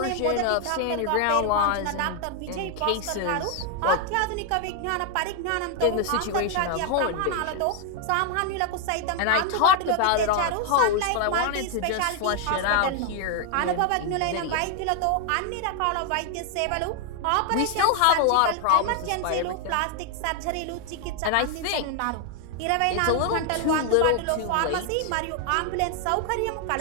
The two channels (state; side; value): different; both; correlation 0.00